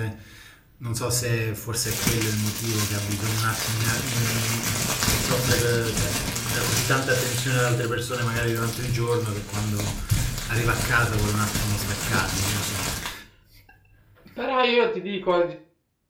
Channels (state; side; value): identical; both; correlation 1.00